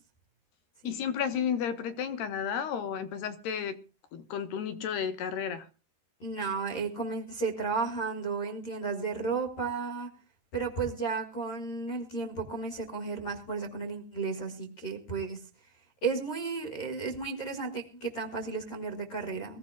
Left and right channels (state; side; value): late; right; 13 ms